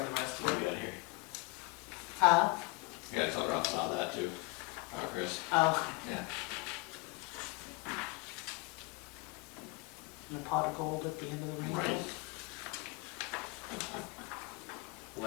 the rest What of do we it. got here? Huh? Yeah, tell Ralph about that too. Chris. Oh. Yeah. And a pot of gold at the end of the rainbow. Right. Will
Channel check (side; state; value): right; quieter; 25.4 dB